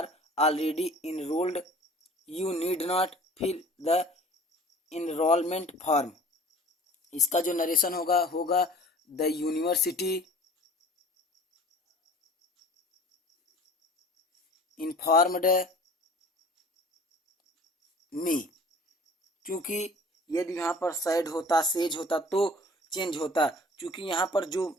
already enrolled, you need not fill the enrolment form. इसका जो नरेशन होगा द यूनिवर्सिटी इन्फॉर्म्ड मी। क्योंकि यदि यहाँ पर सैड होता, सेज होता तो चेंज होता। क्योंकि यहाँ पर जो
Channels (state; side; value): normal; both; correlation 0.46